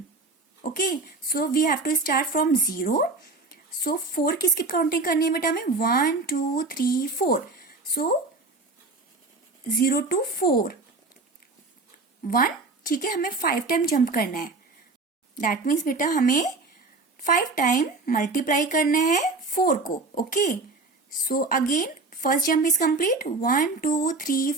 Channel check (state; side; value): quieter; left; 3.6 dB